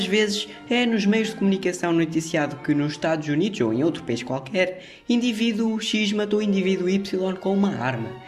vezes é nos meios de comunicação noticiado que nos Estados Unidos ou em outro país qualquer, indivíduo X matou indivíduo Y com uma arma.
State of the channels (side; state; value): both; identical; correlation 1.00